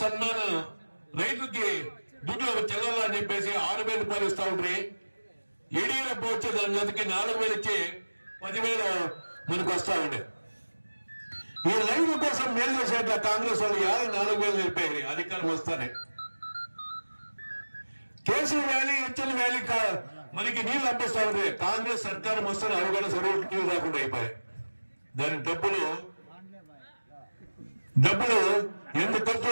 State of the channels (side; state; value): both; inverted; correlation -1.00